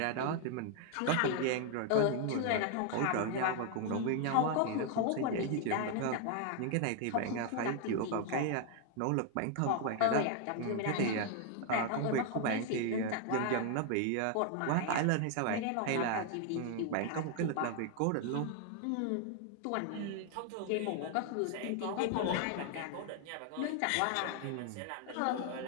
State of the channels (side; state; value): both; different; correlation 0.00